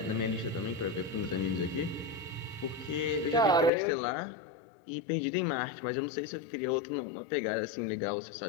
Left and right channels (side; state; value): right; drops out; at 3.7 s